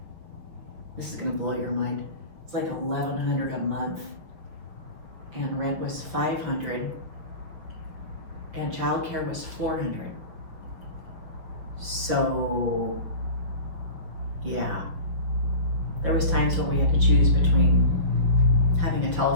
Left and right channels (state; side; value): late; left; 5.8 ms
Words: This is gonna blow your mind. It's like $1,100 a month, and rent was $500, and childcare was $400. So, yeah, there was times when we had to choose between having a